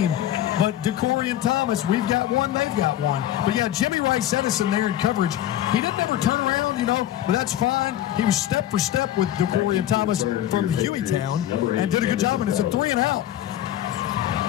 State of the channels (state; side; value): quieter; right; 12.5 dB